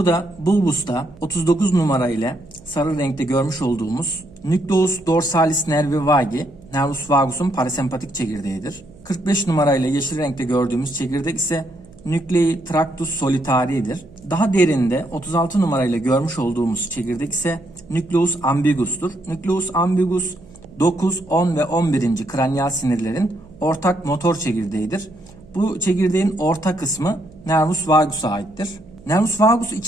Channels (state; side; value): noise; right; hum, 23 dB below the sound